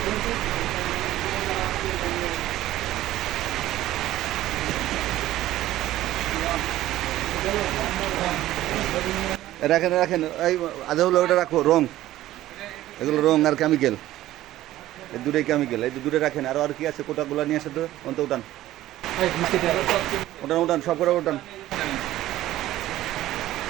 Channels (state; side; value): quieter; left; 14.7 dB